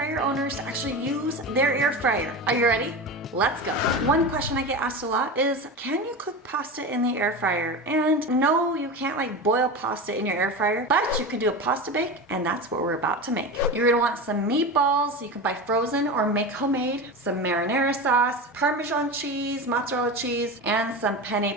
owners to actually use their air fryer. Are you ready? Let's go. One question I get asked a lot is, can you cook pasta in the air fryer? And no, you can't like boil pasta in your air fryer, but you can do a pasta bake, and that's what we're about to make. You're gonna want some meatballs. You can buy frozen or make homemade, some marinara sauce, parmesan cheese, mozzarella cheese, and some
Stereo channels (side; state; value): both; normal; correlation 0.25